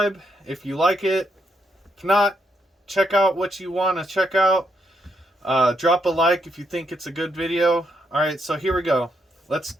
if you like it. If not, check out what you want to check out. Drop a like if you think it's a good video. Alright, so here we go. Let's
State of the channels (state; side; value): normal; both; correlation 0.78